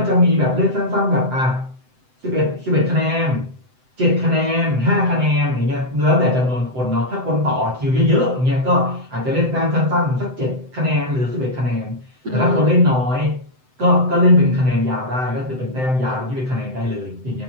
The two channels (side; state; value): left; late; 7.8 ms